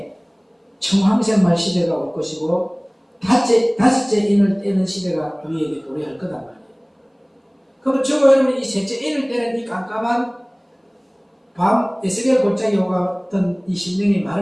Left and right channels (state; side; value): identical; both; correlation 1.00